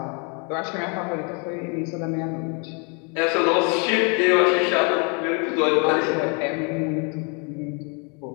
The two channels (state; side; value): quieter; right; 35.1 dB